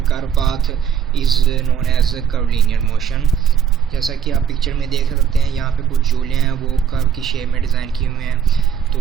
curve path is known as curvilinear motion. जैसा कि आप पिक्चर में देख सकते हैं, यहाँ पे कुछ झूले हैं वो कर्व की शेप में डिज़ाइन किए हुए हैं, तो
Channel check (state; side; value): quieter; left; 8.1 dB